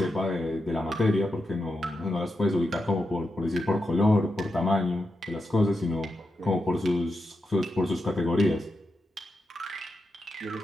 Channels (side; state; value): both; normal; correlation 0.87